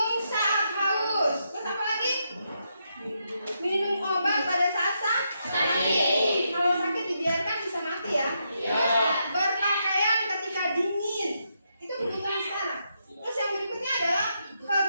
saat haus. Terus apa lagi? Minum obat pada saat sakit. Kalau sakit dibiarkan bisa mati ya. Berpakaian ketika dingin. Itu kebutuhan sekarang. Terus yang berikutnya adalah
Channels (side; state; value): both; inverted; correlation -0.81